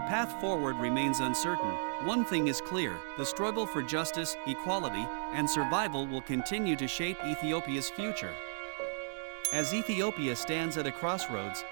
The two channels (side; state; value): left; silent; digital silence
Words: forward remains uncertain, one thing is clear: the struggle for justice, equality, and survival will continue to shape Ethiopia's future. As Ethiopia stands at a crossroads,